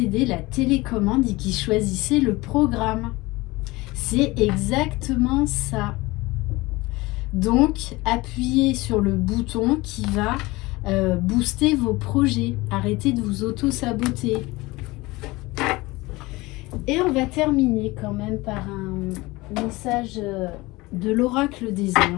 la télécommande et qui choisissez le programme. C'est exactement ça. Donc, appuyez sur le bouton qui va booster vos projets. Arrêtez de vous auto-saboter. Et on va terminer quand même par un message de l'oracle des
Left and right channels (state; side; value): quieter; right; 21.5 dB